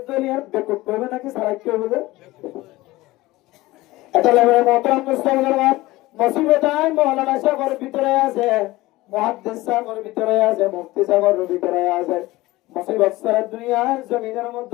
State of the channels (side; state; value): right; quieter; 19.0 dB